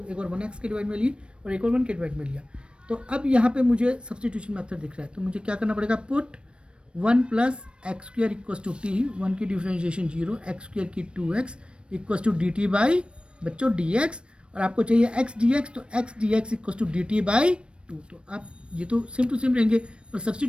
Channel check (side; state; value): left; late; 0.057 ms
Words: एक बार 1x के डिवाइड में ली और एक बार 1 के डिवाइड में लिया। तो अब यहाँ पे मुझे सब्स्टिट्यूशन मेथड दिख रहा है, तो मुझे क्या करना पड़ेगा, put 1 plus x square equals to t, 1 की डिफरेंशिएशन 0, एक्स स्क्वायर की 2x equals to d t by बच्चों डी एक्स, और आपको चाहिए एक्स डी एक्स, तो x d x equals to d t by two. तो आप ये तो सेम टू सेम रहेंगे, पर